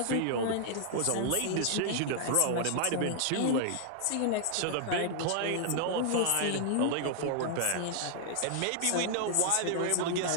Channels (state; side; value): different; both; correlation 0.00